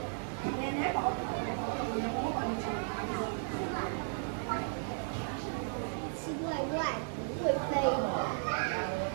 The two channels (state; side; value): silent; left; digital silence